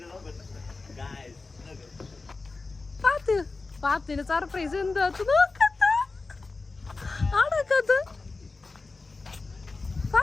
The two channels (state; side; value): quieter; right; 3.8 dB